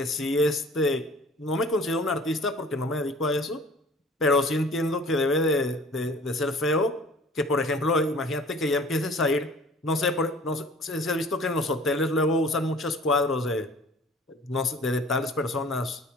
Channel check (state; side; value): normal; both; correlation 0.49